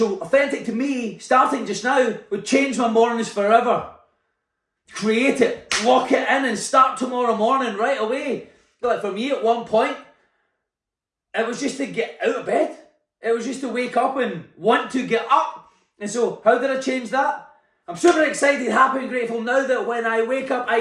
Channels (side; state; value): both; identical; correlation 1.00